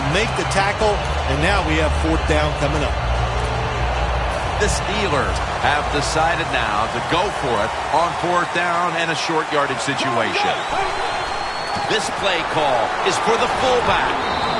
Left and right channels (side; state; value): both; identical; correlation 1.00